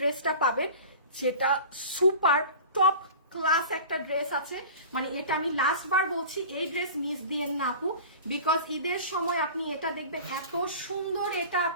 পাবেন, যেটা সুপার টপ ক্লাস একটা ড্রেস আছে। মানে এটা আমি লাস্ট বার বলছি, এই ড্রেস মিস দিয়েন না আপু, বিকজ ঈদের সময় আপনি এটা দেখবেন এত সুন্দর, এটা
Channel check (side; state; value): both; inverted; correlation -0.37